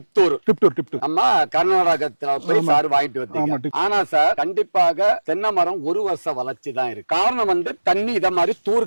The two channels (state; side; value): inverted; both; correlation -1.00